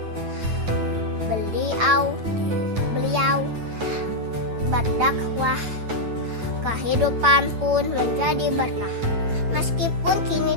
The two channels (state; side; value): late; left; 8.9 ms